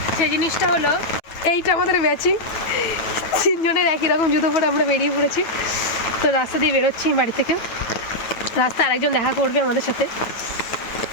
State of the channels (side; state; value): right; late; 9.1 ms